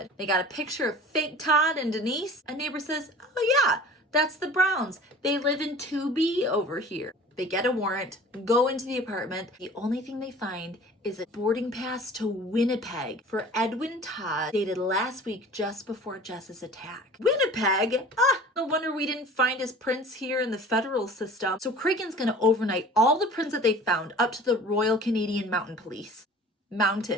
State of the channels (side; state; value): both; normal; correlation 0.43